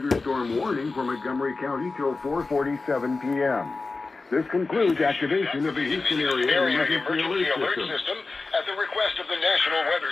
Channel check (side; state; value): right; quieter; 3.8 dB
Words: warning for Montgomery County till 4:47 p.m. This concludes activation of the Houston Area Emergency Alert System at the request of the National Weather